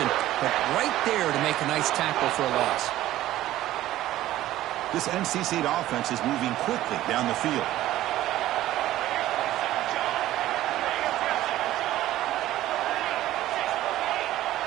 but right there to make a nice tackle for a loss. This NC State offense is moving quickly down the field.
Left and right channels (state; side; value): quieter; left; 14.5 dB